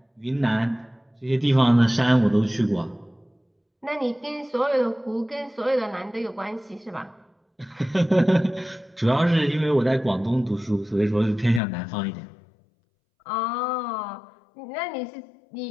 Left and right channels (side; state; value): right; drops out; at 11.6 s